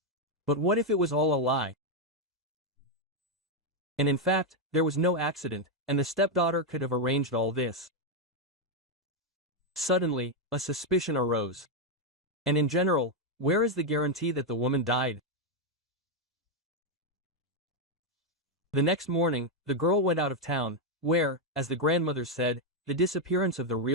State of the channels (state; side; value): normal; both; correlation 0.02